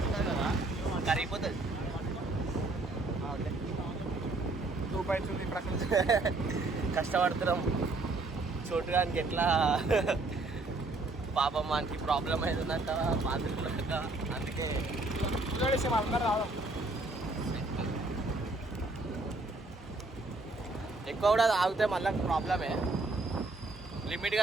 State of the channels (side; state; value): left; quieter; 3.1 dB